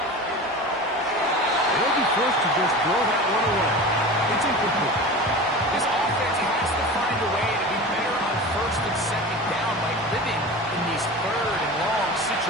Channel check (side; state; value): both; normal; correlation 0.32